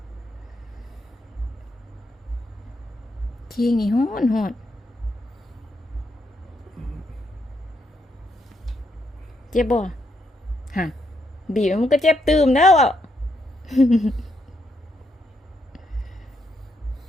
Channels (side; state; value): both; normal; correlation 0.78